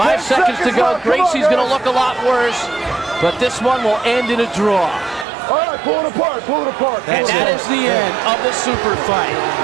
seconds to go. Greisi's going to look a lot worse, but this one will end in a draw. All right, pull it apart. Pull it apart. And that is the end of the super fight.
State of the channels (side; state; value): left; drops out; at 5.2 s